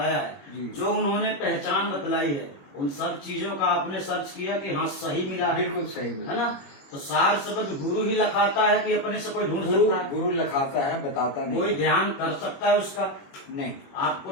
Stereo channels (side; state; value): right; late; 21 ms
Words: जी। है, जो उन्होंने पहचान बतलाई है, उन सब चीजों का आपने सर्च किया कि हाँ सही मिला है, बिल्कुल सही है ना? तो सार शब्द गुरु ही लखाता है कि अपने से कोई ढूंढ सकता है? गुरु लखाता है, बताता नहीं। कोई ध्यान कर सकता है उसका? नहीं